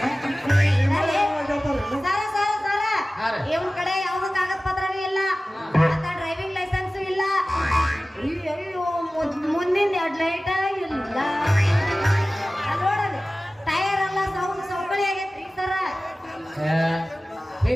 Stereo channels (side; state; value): both; normal; correlation 0.97